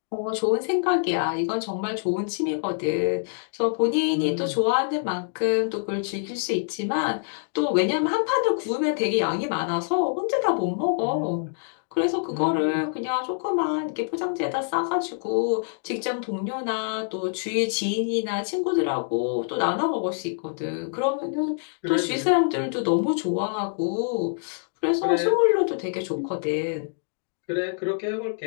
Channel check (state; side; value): silent; right; digital silence